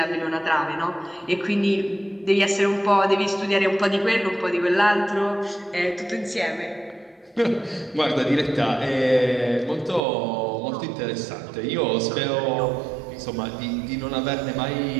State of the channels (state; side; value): drops out; left; at 10.0 s